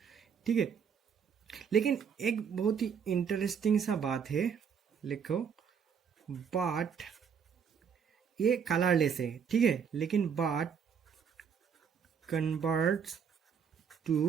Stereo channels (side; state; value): left; quieter; 7.0 dB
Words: ठीक है, लेकिन एक बहुत ही इंटरेस्टिंग सा बात है, लिखो, बट ये कलरलेस है, ठीक है, लेकिन but converts